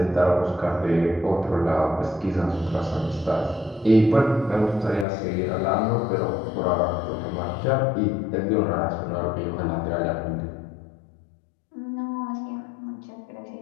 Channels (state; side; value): drops out; right; at 5.1 s